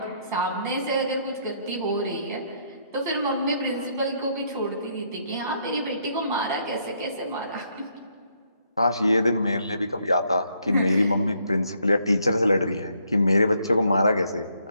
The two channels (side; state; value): both; inverted; correlation -0.72